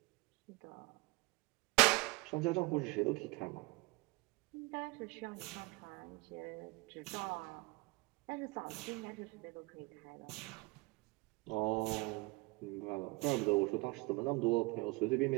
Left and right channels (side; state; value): left; quieter; 25.3 dB